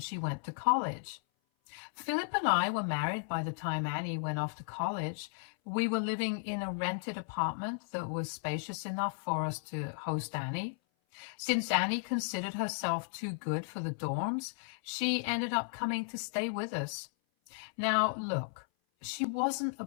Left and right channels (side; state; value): right; silent; 55 dB below the other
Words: went to college. Philip and I were married by the time Annie went off to college. We were living in a rented apartment that was spacious enough for us to host Annie. Since Annie considered herself too good for the dorms, she ended up coming to stay with us. Now, look, she wasn't a